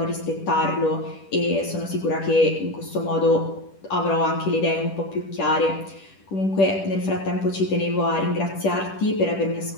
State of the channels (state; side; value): late; right; 10 ms